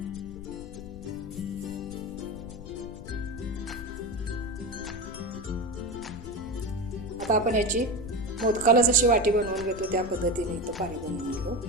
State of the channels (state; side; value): noise; left; rumble, 13 dB below the sound